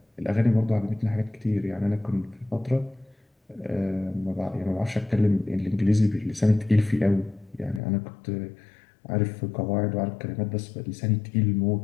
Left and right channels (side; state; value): right; drops out; at 7.8 s